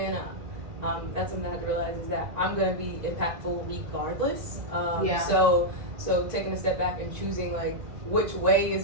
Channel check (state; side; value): late; left; 2.0 ms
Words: that's something I had to realize is that I'm going to be impactful regardless. So taking a step back and choosing like which way